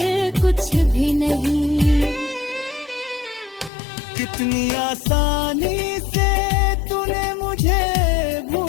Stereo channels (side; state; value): right; drops out; at 3.7 s